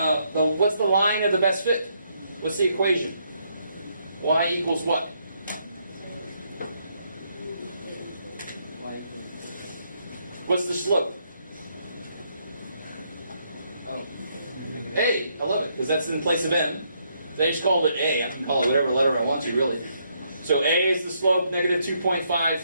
the line of the best fit? What's the equation? Y equals what? What's the slope? Oh. A. I love it, because that's in place of M. They just called it A. I can call it whatever letter I want to, really. So A is the slope, negative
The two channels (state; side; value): inverted; both; correlation -0.74